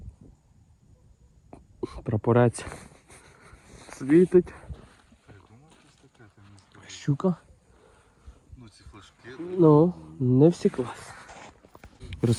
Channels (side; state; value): both; identical; correlation 1.00